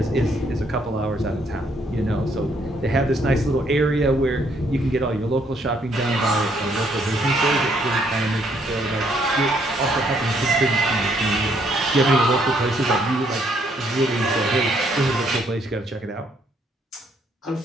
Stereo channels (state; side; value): normal; both; correlation 0.69